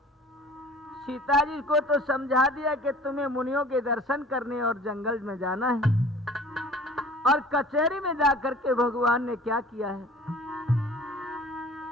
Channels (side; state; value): both; normal; correlation 0.46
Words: सीता जी को तो समझा दिया कि तुम्हें मुनियों के दर्शन करने और जंगल में जाना है, और कचहरी में जाकर के भगवान ने क्या किया है,